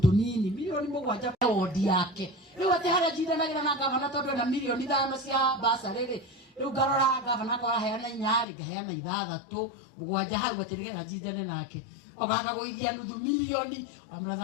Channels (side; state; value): right; drops out; at 8.5 s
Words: milioni 7 wodi yake riu ati haria jindanagira na governor tondu na milioni 5 cia basa riri riu garora governor kwa heana 4 ngaheana 6 7 hau atirigera jindane nake ogaga guithia nuthu milioni